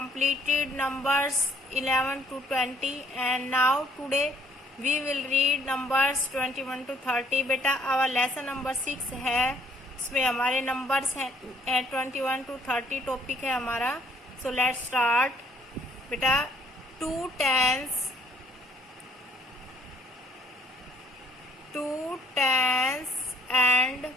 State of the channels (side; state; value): both; normal; correlation 0.63